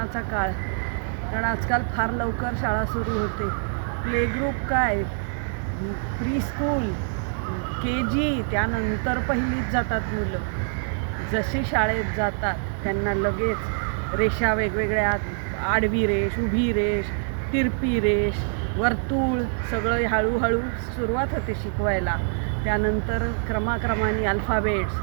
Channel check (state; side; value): silent; left; 62 dB below the other